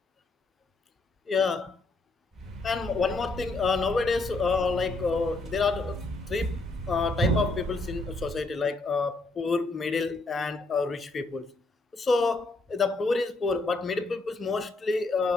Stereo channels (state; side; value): quieter; right; 3.2 dB